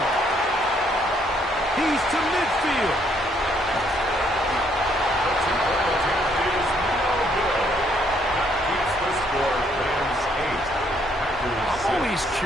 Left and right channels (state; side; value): normal; both; correlation 0.69